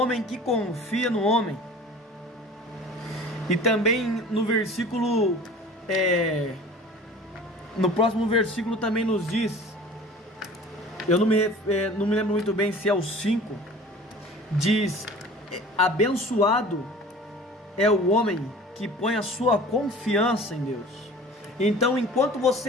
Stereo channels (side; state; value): both; normal; correlation 0.43